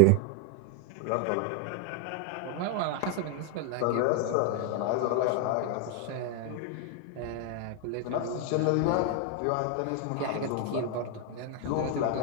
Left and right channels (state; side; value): different; both; correlation 0.01